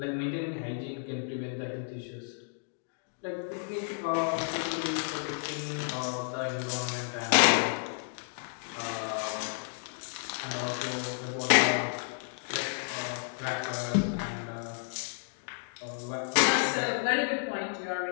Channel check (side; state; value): right; silent; digital silence